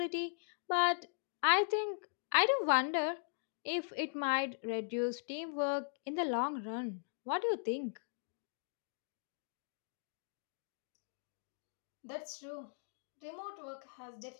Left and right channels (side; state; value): right; silent; digital silence